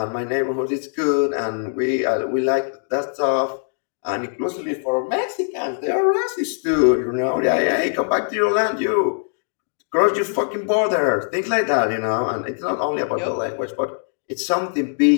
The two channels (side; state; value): right; silent; digital silence